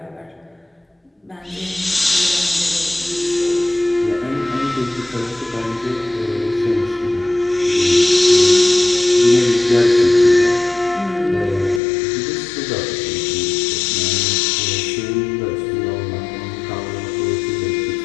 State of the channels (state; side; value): drops out; right; at 11.8 s